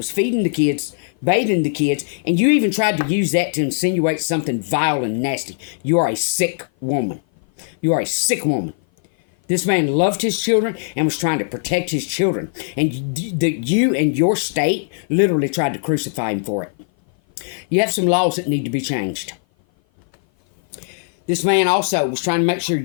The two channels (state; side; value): silent; right; 56 dB below the other